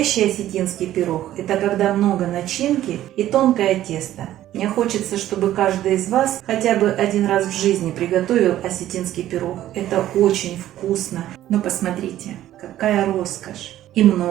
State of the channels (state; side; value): quieter; left; 13.2 dB